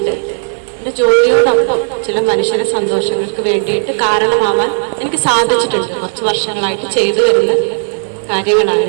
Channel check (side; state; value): left; silent; digital silence